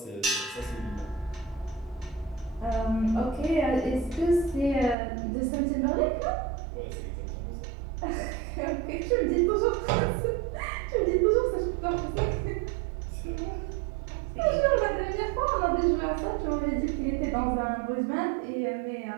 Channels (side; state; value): left; drops out; at 5.0 s